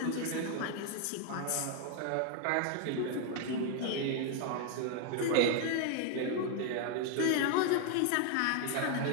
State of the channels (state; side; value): different; both; correlation 0.00